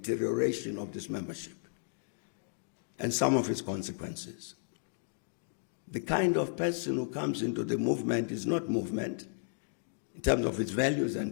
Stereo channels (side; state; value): right; silent; digital silence